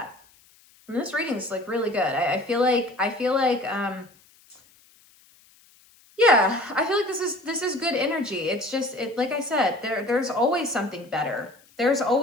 And this reading is like really good. I feel like yeah, I feel like this is good energy. It's just, like I said, there's always something better. There's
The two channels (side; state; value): left; noise; hiss, 29 dB below the sound